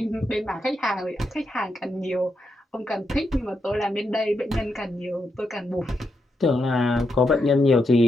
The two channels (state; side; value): normal; both; correlation 0.83